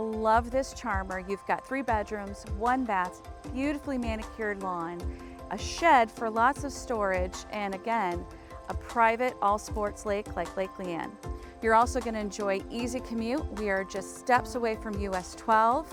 this charmer. You've got 3 bedrooms, 1 bath, beautifully manicured lawn, a shed for lots of storage, and again, a private all-sports lake like Lake Leann. You're also going to enjoy easy commute. We are just steps away from US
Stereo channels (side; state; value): both; identical; correlation 1.00